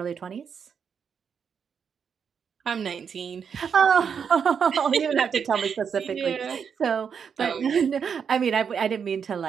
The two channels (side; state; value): left; quieter; 6.9 dB